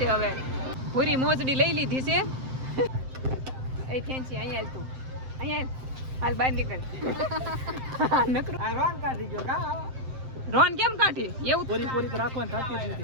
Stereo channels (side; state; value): left; late; 7.7 ms